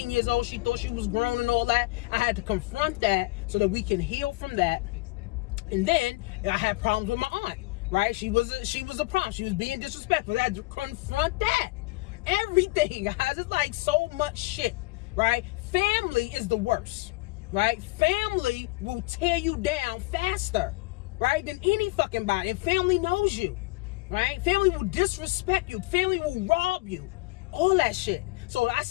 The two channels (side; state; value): right; quieter; 23.2 dB